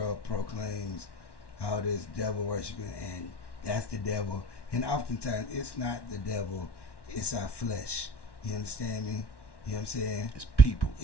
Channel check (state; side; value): late; right; 1.1 ms